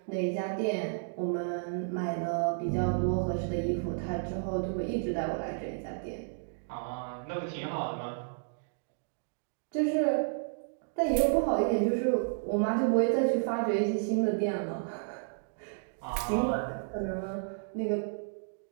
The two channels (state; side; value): silent; left; digital silence